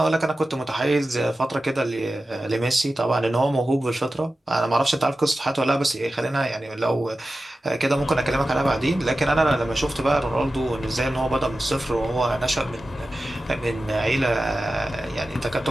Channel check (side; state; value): both; normal; correlation 0.94